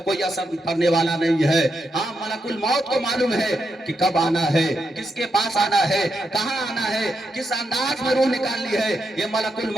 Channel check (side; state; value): both; normal; correlation 0.83